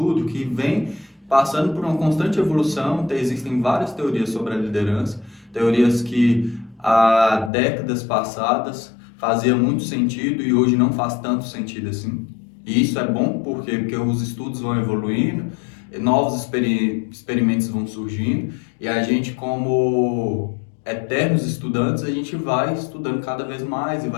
que vem passando por uma constante evolução. Existem várias teorias sobre a liderança, teorias que há décadas passadas fazia muito sentido e hoje não faz tanto sentido assim. E isso é bom porque os estudos vão evoluindo, novos experimentos vão surgindo e a gente, como eternos estudantes, a gente vai estudando cada vez mais e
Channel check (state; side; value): drops out; right; at 7.5 s